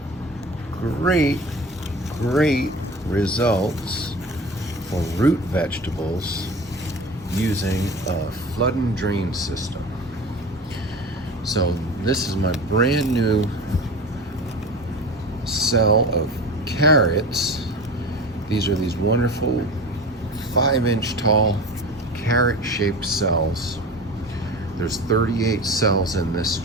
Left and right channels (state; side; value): normal; both; correlation 0.33